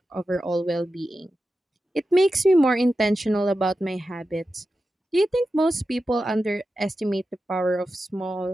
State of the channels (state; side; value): normal; both; correlation 0.91